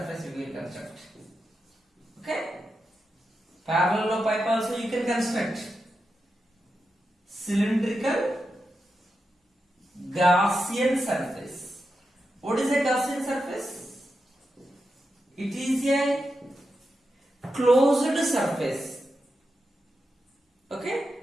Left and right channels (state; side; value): normal; both; correlation 0.88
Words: we will construct. Okay? Parallel pipe also you can construct. Cylindrical Gaussian surface. What is a Gaussian surface? It is a closed surface. Okay?